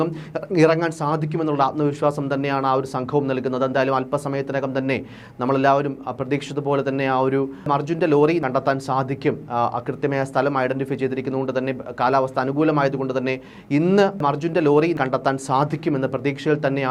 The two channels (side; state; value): both; identical; correlation 1.00